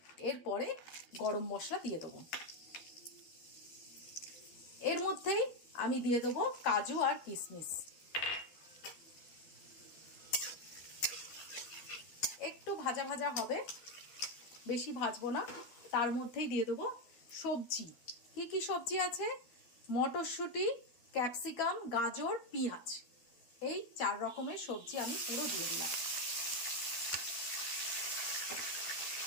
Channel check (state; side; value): late; right; 12 ms